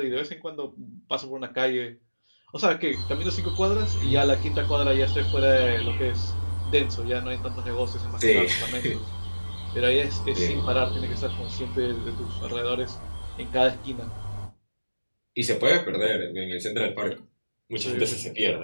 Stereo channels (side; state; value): both; inverted; correlation -1.00